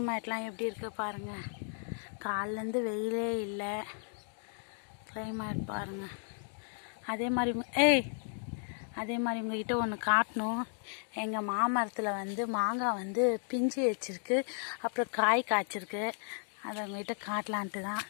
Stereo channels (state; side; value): silent; right; 55 dB below the other